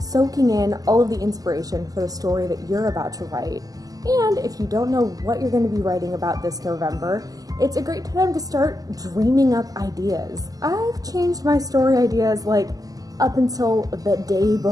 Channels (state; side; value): late; left; 0.17 ms